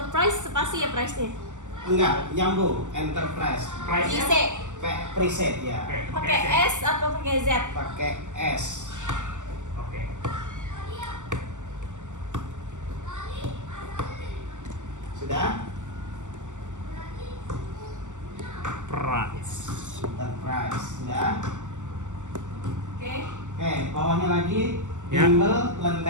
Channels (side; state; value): left; late; 0.85 ms